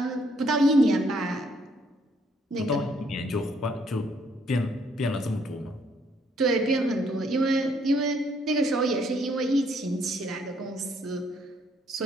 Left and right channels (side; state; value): both; normal; correlation 0.68